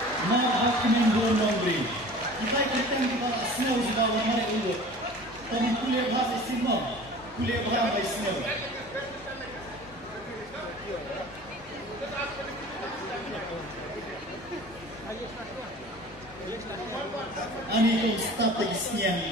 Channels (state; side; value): normal; both; correlation 0.42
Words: Macmillan Nongstoin. Kita kirkan di bawah snow di bawah mari ulut. Kami kuliah bahasa Sino, kuliah bahasa Sino. Ani kong strategi Sniang,